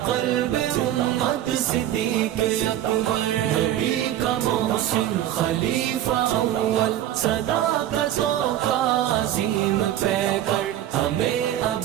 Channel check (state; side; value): quieter; left; 12.2 dB